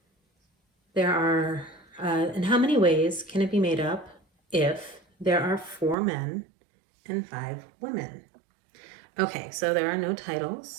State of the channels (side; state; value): left; drops out; at 6.0 s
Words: There are, in how many ways can it be made up if there are 4 men and 5 women? Okay, so there are no